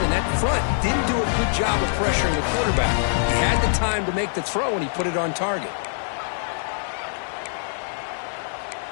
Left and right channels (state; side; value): silent; right; digital silence